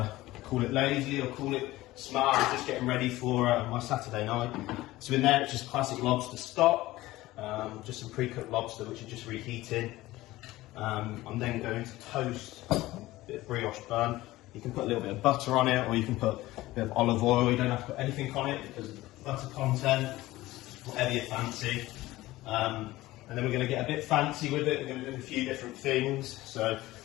call it lazy or call it smart. I'm just getting ready for my Saturday night. So in there, it's just classic lobster stock, just some pre-cooked lobster, which is just reheating. I'm then going to toast a bit of brioche bun. You can put a little bit of butter on it, or you can put a bit of olive oil. You don't have to put anything on it because of the butter content, whatever you fancy. And then we're going to get a bit fancy with it. We're going to do a few different things. So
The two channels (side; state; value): right; quieter; 17.6 dB